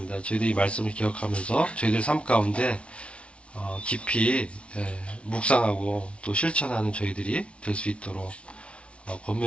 저희들이 이 말씀을 기억하면서 저희들 삶 가운데 깊이 묵상하고 또 실천하는 저희들이 될 수 있도록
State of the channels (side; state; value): right; late; 0.060 ms